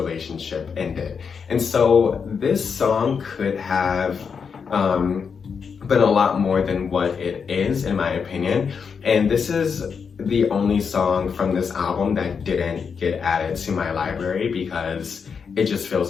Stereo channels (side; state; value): right; quieter; 6.1 dB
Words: ended. And so this song could have been a lot more than what it is, in my opinion. And this is the only song from this album that didn't get added to my library because it just